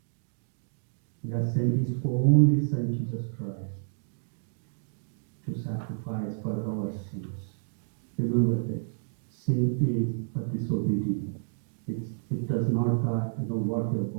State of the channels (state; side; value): silent; left; digital silence